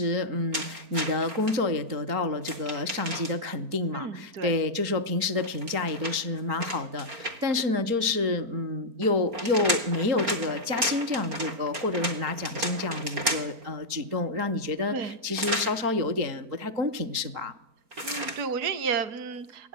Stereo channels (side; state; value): left; late; 4.3 ms